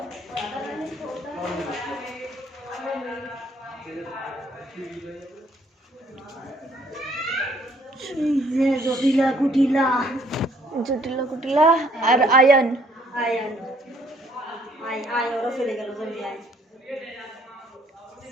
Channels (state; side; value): normal; both; correlation 0.63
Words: राधा रानी জটিলা কুটিলা জটিলা কুটিলা আর আয়ন। আয়ন আয় আয় ওরা চলে গেল জমি আয়